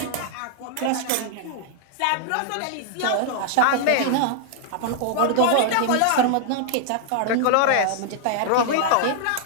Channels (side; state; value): both; different; correlation -0.01